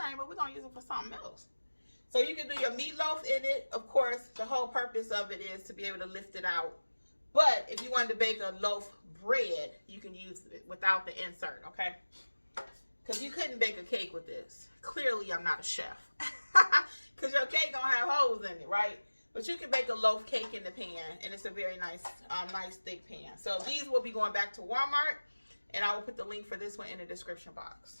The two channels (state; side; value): inverted; both; correlation -1.00